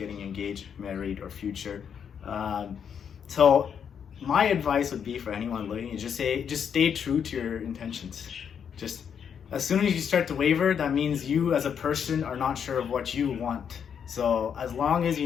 engaged, married, or future. So my advice would be for anyone looking is just stay true to your intentions. Just as soon as you start to waver, that means you as a person are not sure of what you want. So as long as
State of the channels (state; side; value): quieter; right; 7.7 dB